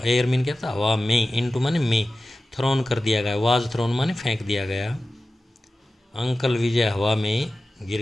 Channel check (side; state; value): both; normal; correlation 0.95